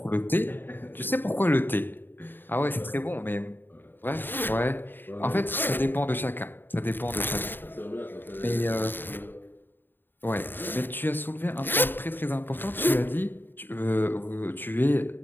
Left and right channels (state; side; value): late; right; 0.094 ms